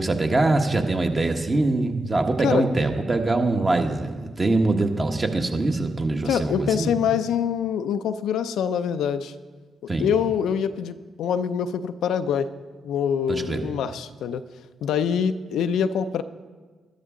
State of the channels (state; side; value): normal; both; correlation 0.76